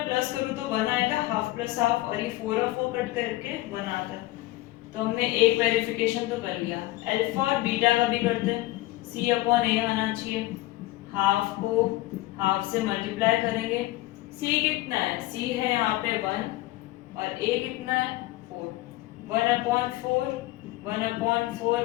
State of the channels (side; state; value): right; quieter; 18.1 dB